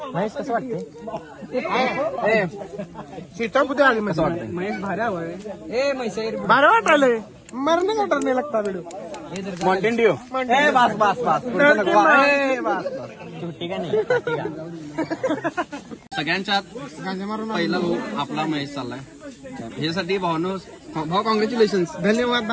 कसं वाटते सीटा कुठे आली महेश वाटतं महेश भारी हवंय भारी वाटायलंय मरणे वाटत नाही लागता व्हिडिओ माउंटेन ड्यू बस सुट्टी का नाही सगळ्यांच्यात पहिला भाऊ आपला महेश चाललाय ह्यासाठी भाऊ कॉंग्रॅच्युलेशन धन्यवाद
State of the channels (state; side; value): identical; both; correlation 1.00